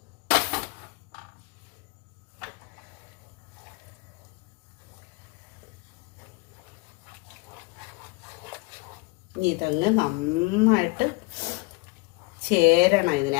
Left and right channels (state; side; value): quieter; right; 25.3 dB